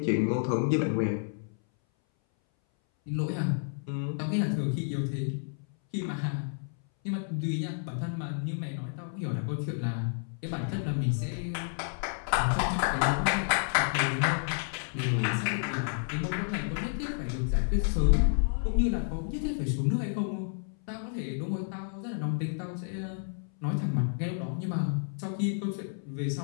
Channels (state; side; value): silent; right; 57 dB below the other